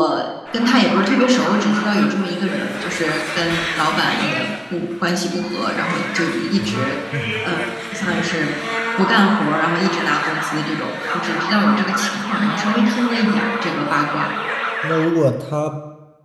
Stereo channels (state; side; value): identical; both; correlation 1.00